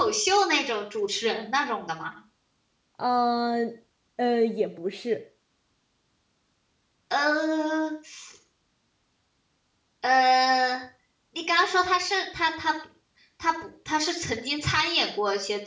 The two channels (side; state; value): both; identical; correlation 1.00